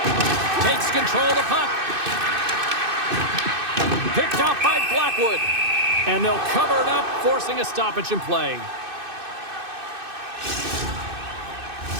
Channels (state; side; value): late; left; 2.6 ms